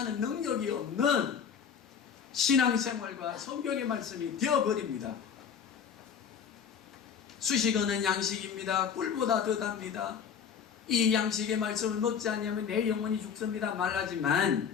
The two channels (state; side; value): quieter; right; 7.3 dB